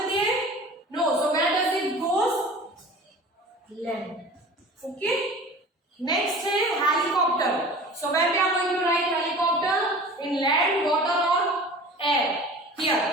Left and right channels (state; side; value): normal; both; correlation 0.40